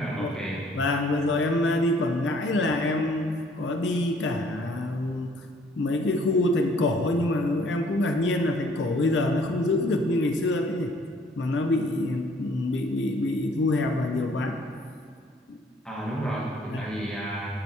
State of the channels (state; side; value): normal; both; correlation 0.60